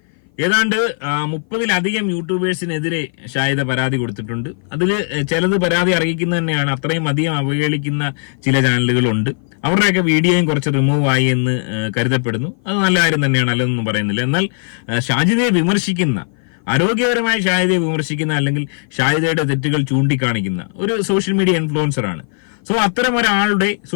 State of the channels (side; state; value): right; silent; 57 dB below the other